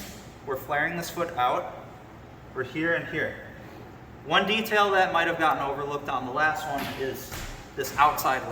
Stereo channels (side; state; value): both; identical; correlation 1.00